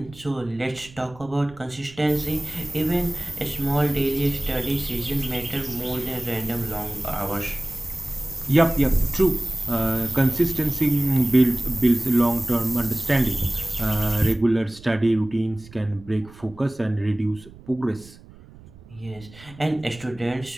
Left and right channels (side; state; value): right; noise; rumble, 21 dB below the sound